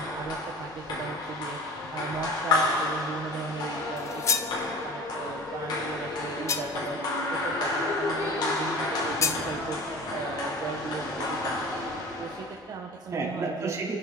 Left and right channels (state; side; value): normal; both; correlation 0.38